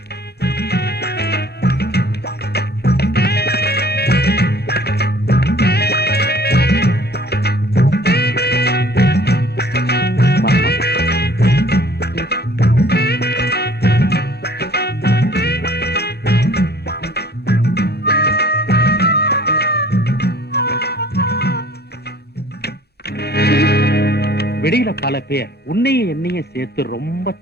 வெளியில பல பேர் உன்னையும் என்னையும் சேர்த்து ரொம்ப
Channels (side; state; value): both; normal; correlation 0.53